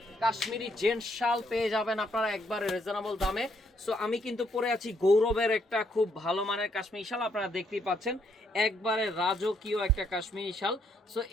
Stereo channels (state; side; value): normal; both; correlation 0.72